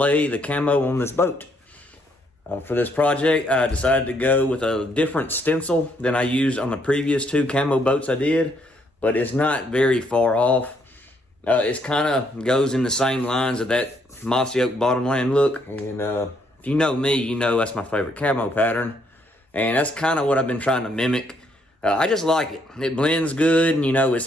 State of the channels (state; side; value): normal; both; correlation 0.71